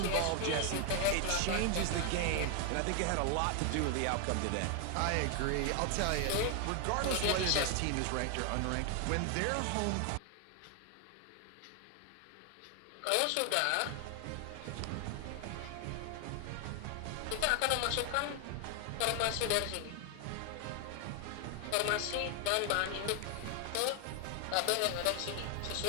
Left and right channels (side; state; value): both; different; correlation 0.00